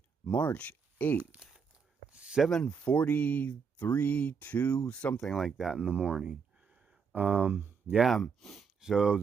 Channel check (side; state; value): left; quieter; 6.0 dB